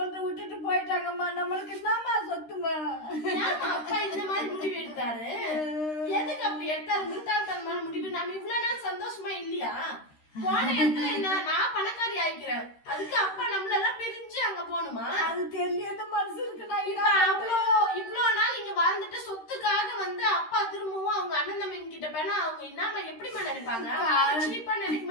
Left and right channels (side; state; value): right; late; 13 ms